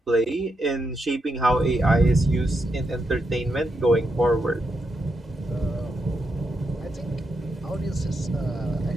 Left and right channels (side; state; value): both; normal; correlation 0.83